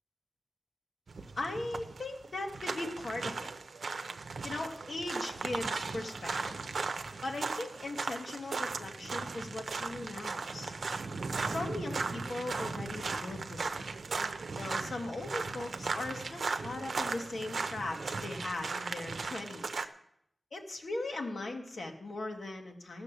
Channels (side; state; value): both; normal; correlation 0.91